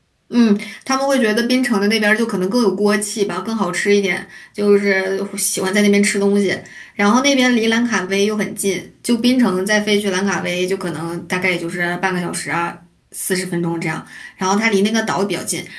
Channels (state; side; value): identical; both; correlation 1.00